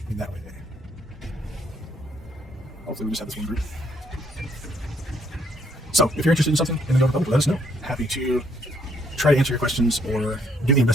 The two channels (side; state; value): both; normal; correlation 0.68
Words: In that way. Hopefully we just have this one group. So, if you're interested in something in the Old Republic, let us know. Happy to try to answer your questions or do the